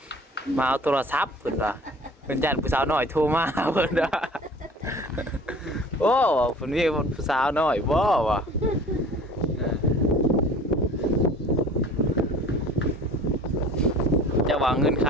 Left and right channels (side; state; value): both; normal; correlation 0.46